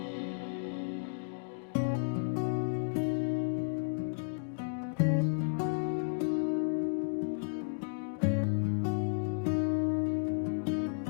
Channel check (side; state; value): right; silent; digital silence